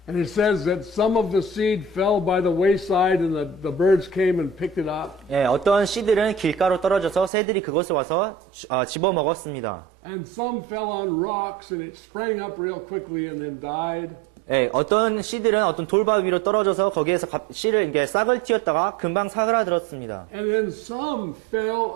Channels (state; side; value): drops out; left; at 7.3 s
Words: And it says that some of the seed fell by the wayside and the birds came and picked it up. 예, 어떤 씨들은 길가로 떨어져서 새들이 그것을 와서 집어 먹었습니다. And some fell on rocks and it sprang up real quickly and then died. 예, 어떤 씨들은 어떤 돌바 위로 떨어져서 거기에서 씨를 이게 싹을 틔웠다가 금방 사그라들었습니다. And then some fell